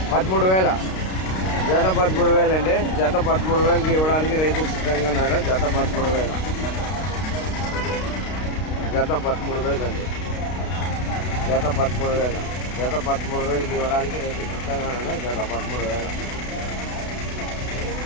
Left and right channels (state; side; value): late; right; 32 ms